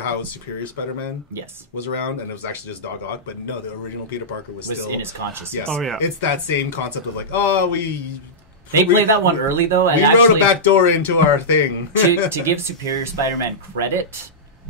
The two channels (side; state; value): both; normal; correlation -0.13